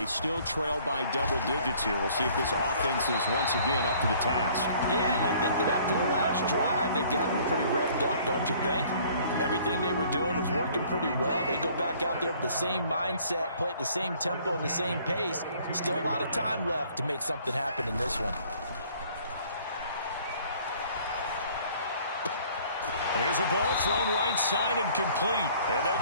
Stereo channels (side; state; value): both; inverted; correlation -0.56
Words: still trail by double digits here. We'll see if this offense is once again up to the task. Yeah, and I think that after the last drive, they've gotten pretty revved up, don't you think? Everything they were doing was working pretty well. They go back out there with the same mindset, play at the same tempo and the same pace. Still a lot of time left to make something happen in this one. Here's a ball thrown right side and complete. And they'll